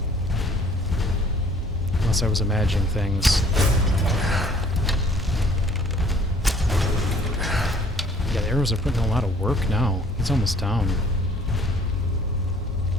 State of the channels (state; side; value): normal; both; correlation 0.56